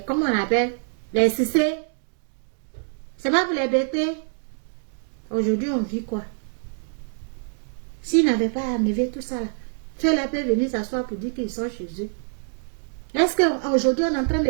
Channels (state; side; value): silent; left; 62 dB below the other